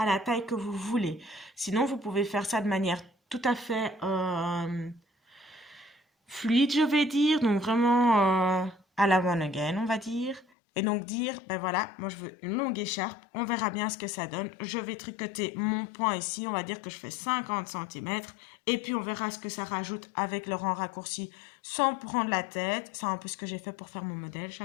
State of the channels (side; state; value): right; drops out; at 10.5 s